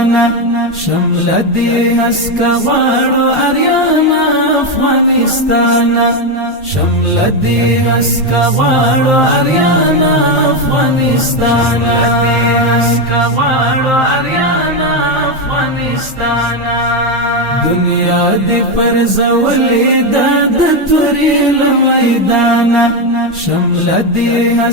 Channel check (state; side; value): normal; both; correlation 0.08